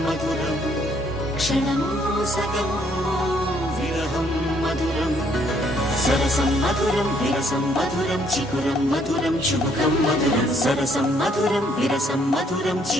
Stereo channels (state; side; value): normal; both; correlation 0.67